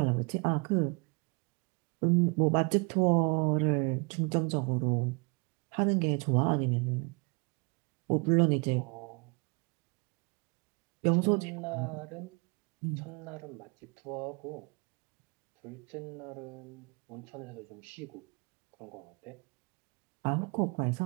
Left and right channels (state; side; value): quieter; left; 32.0 dB